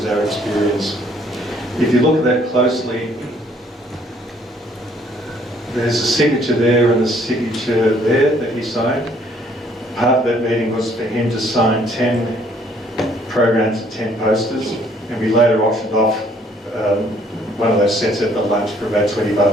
our experience. If you look at that closely, there's a signature there and a signature there that he signed. Part of that meeting was for him to sign 10 programs and 10 posters, and we later auctioned off one of those sets at the lunch for about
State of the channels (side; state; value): both; normal; correlation 0.63